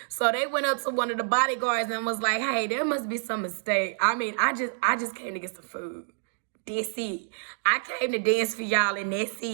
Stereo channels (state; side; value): silent; left; digital silence